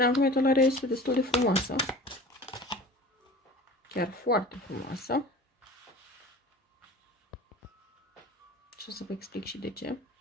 acum etalarea este destul de frumoasă. Chiar foarte frumoasă. Și o să vă explic și de ce.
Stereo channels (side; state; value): both; normal; correlation 0.40